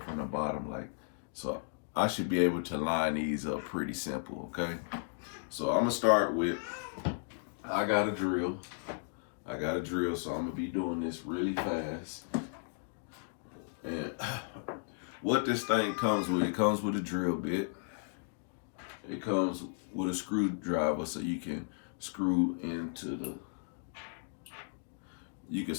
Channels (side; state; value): right; silent; digital silence